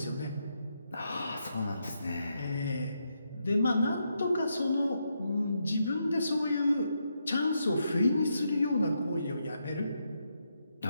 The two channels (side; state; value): both; inverted; correlation -0.81